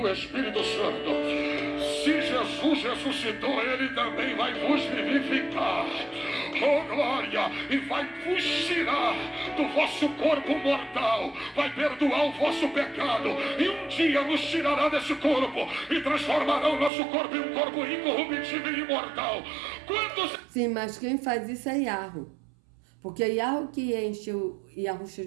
Espírito Santo. Se Jesus ressuscitou, ele também vai vos vivificar. Oh glória! E vai vos tirar do vosso corpo mortal, vai perdoar o vosso pecado, e um dia nos tirará desse corpo e transformará o nosso corpo em um corpo incorruptível e imortal. Quantos... Sim, mas quem faz isso é Yahweh. Porque é Yahweh que enche o Yahusha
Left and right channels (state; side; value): drops out; left; at 16.9 s